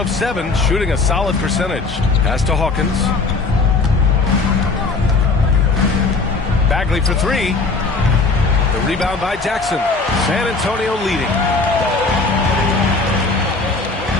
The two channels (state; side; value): quieter; right; 3.9 dB